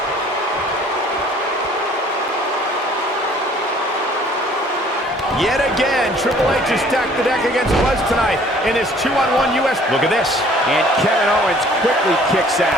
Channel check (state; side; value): normal; both; correlation 0.55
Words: Yet again, Triple H has stacked the deck against Buzz tonight in his 2-on-1 U.S. Look at this. And Kevin Owens quickly kicks